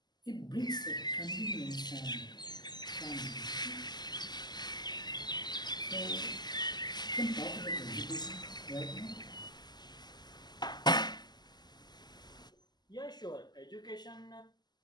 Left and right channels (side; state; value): right; late; 0.21 ms